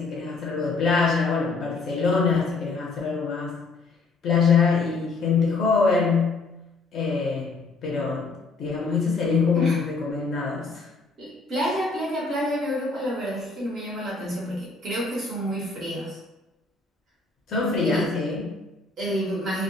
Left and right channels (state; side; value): quieter; right; 3.8 dB